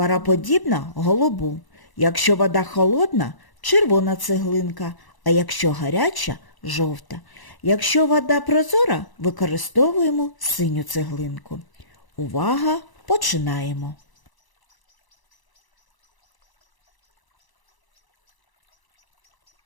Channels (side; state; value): right; late; 1.0 ms